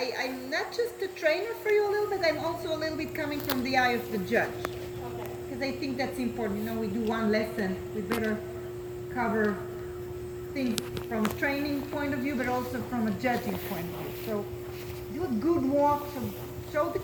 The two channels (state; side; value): identical; both; correlation 1.00